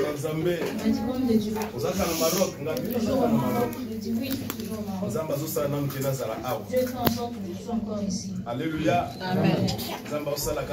Zambé. Il m'a dit, homme de Dieu. Vous êtes au Maroc. Toujours au Maroc. Je dis oui, je suis toujours au Maroc. Dieu fait en sorte que je sois encore ici. Alléluia. Amen.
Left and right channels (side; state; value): both; identical; correlation 1.00